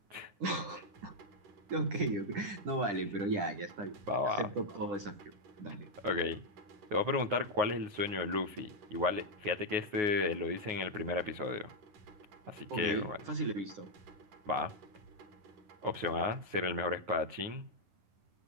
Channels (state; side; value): late; left; 10 ms